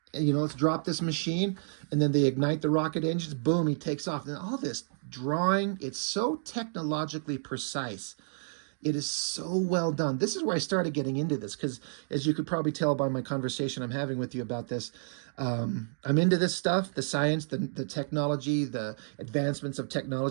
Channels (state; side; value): silent; left; digital silence